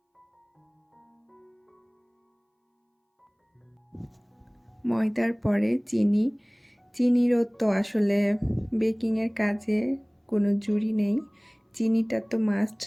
ময়দার পরে চিনিরও তো আসলে বেকিংয়ের কাজে কোনো জুড়ি নেই, চিনিটা তো মাস্ট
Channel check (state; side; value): identical; both; correlation 1.00